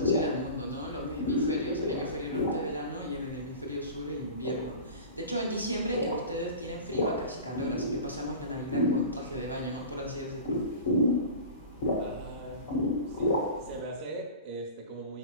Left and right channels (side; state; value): both; inverted; correlation -0.35